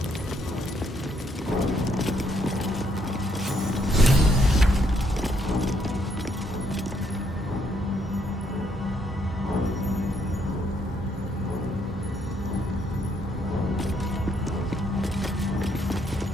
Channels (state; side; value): normal; both; correlation 0.72